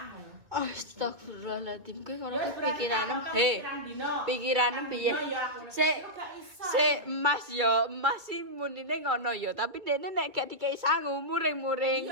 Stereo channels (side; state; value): left; late; 2.3 ms